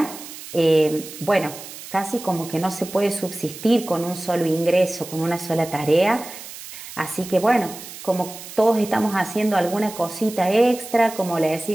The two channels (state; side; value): noise; right; hiss, 13 dB below the sound